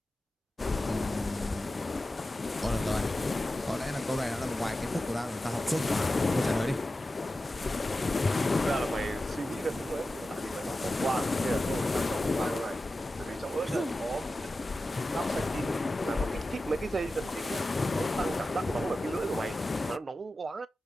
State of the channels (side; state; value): both; normal; correlation 0.93